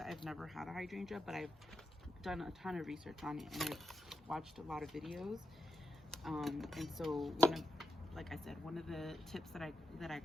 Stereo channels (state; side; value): normal; both; correlation 0.85